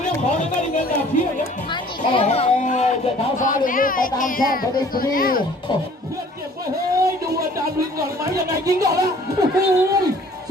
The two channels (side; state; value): both; normal; correlation 0.53